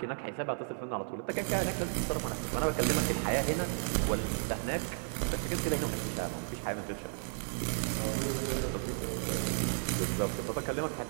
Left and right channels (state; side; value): silent; left; 55 dB below the other